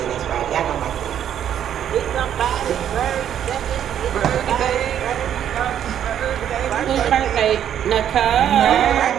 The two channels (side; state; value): left; quieter; 9.8 dB